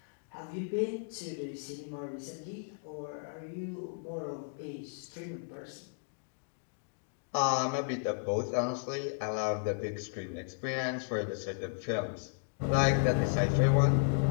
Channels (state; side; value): silent; right; digital silence